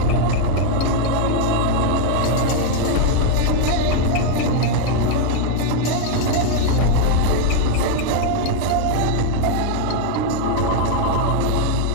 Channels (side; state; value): both; different; correlation 0.00